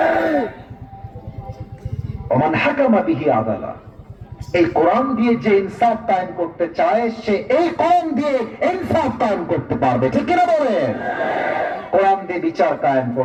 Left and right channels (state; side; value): identical; both; correlation 1.00